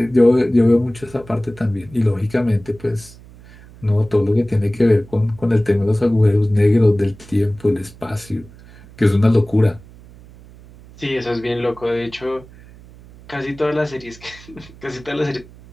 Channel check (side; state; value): right; noise; hum, 22 dB below the sound